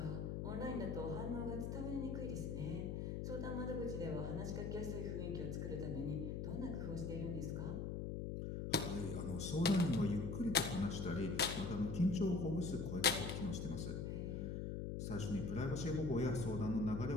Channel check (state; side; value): noise; left; hum, 3 dB below the sound